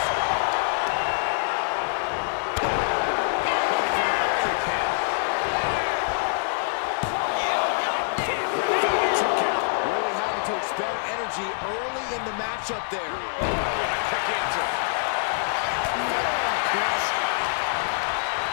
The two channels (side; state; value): right; silent; digital silence